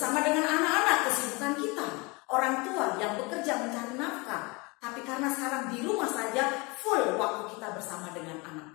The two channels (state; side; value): quieter; right; 27.1 dB